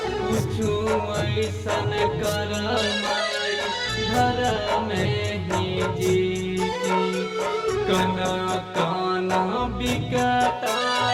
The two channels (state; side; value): identical; both; correlation 1.00